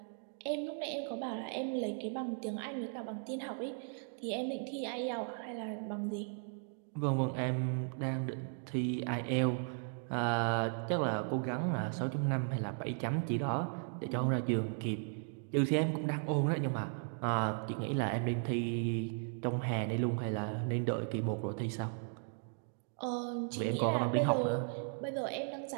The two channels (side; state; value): left; silent; 53 dB below the other